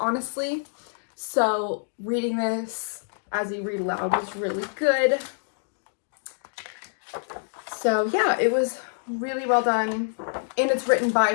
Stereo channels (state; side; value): silent; right; digital silence